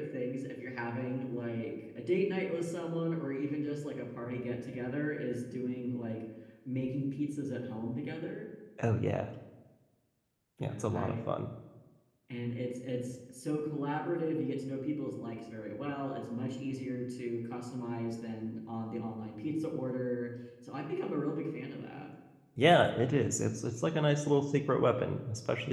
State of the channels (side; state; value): both; identical; correlation 1.00